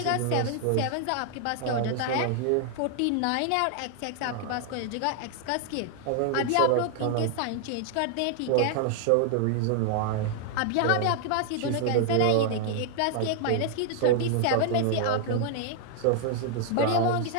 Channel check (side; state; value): both; different; correlation 0.00